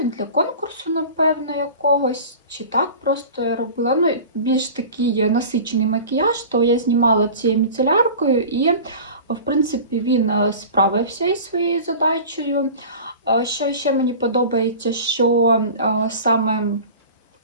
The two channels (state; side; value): inverted; both; correlation -0.38